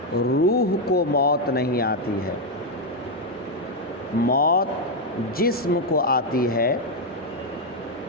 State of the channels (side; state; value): both; normal; correlation 0.02